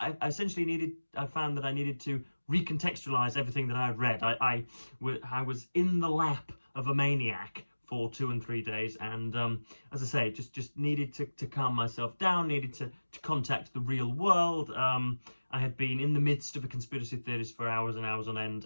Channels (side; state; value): both; inverted; correlation -1.00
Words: essentially I found that I needed to recontextualize everything that I had read. I was in the lap of a maniac for 2 and 3 days, and as I say, just needed to calm myself down, needed to contact the real world. I had been in the midst of a conspiracy theorist for hours and hours on